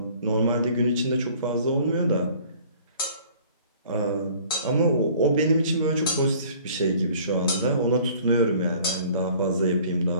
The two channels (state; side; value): inverted; both; correlation -0.53